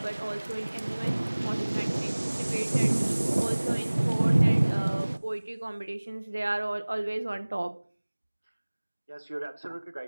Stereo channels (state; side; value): inverted; both; correlation -1.00